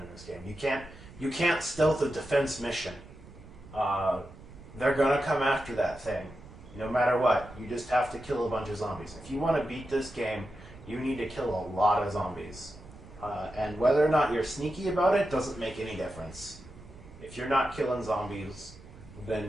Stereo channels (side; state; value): right; noise; rumble, 19 dB below the sound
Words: this game. You can't stealth a defense mission. They're gonna come after that thing, no matter what. You just have to kill a bunch of zombies. If you want to beat this game, you need to kill a lot of zombies. And whether or not you're sneaky about it doesn't make any difference. If you're not killing zombies,